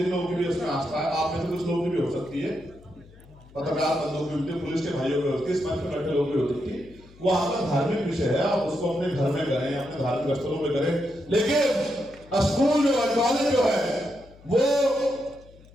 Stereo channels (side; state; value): left; noise; hum, 24 dB below the sound